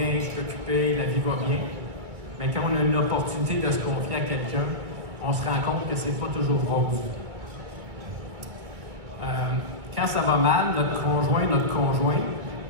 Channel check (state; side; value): late; left; 2.3 ms